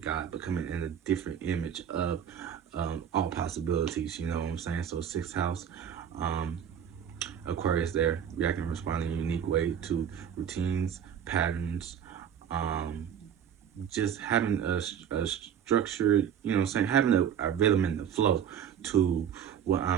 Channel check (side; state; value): left; quieter; 8.7 dB